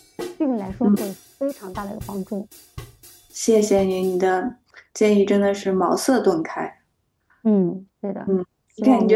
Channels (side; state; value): both; identical; correlation 1.00